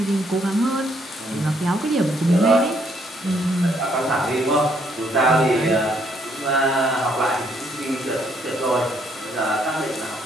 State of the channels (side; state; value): both; normal; correlation 0.69